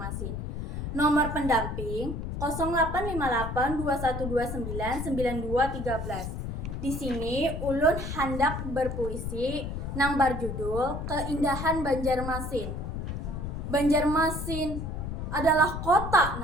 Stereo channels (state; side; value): noise; left; rumble, 5 dB below the sound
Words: Nomor pendamping 085821299213. Di sini ulun hendak berpuisi nang berjudul Keindahan Banjarmasin. Banjarmasin adalah kota